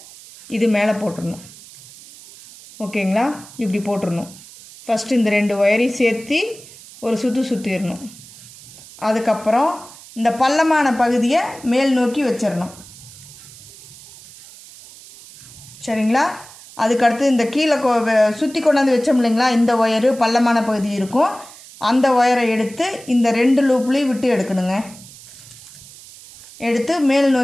இது மேலே போட்டுடணும். ஓகேங்களா? இப்படி போட்டுடணும். ஃபஸ்ட்டு இந்த 2 ஒயரையும் சேர்த்து ஒரு சுற்றிடணும். அதுக்கப்புறம் இந்த பள்ளமான பகுதியை மேல் நோக்கி வச்சிடணும். சரிங்களா? அதுக்கடுத்து இந்த கீழே சுற்றி கொண்டாந்து வச்சோம் இல்லைங்களா, இந்த ஒயரு பள்ளமான பகுதி இருக்கும், அந்த ஒயரை எடுத்து இந்த 2 லூப்லேயும் விட்டு எடுக்கணுங்க. எடுத்து மேல்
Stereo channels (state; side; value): noise; right; hiss, 19 dB below the sound